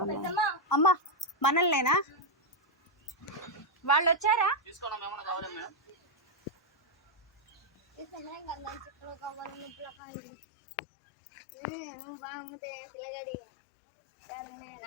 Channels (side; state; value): right; drops out; at 10.0 s